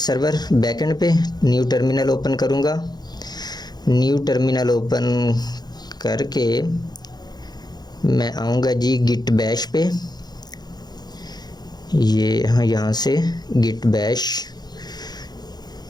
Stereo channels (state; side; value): late; right; 0.20 ms